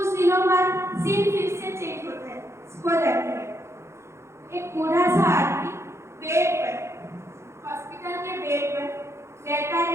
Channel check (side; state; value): left; late; 0.13 ms